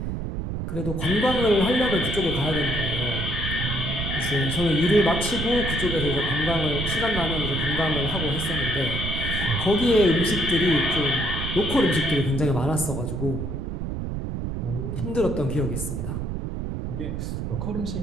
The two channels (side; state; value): right; noise; rumble, 4 dB below the sound